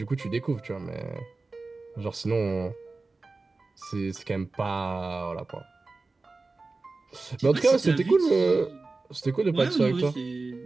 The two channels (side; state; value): left; quieter; 3.6 dB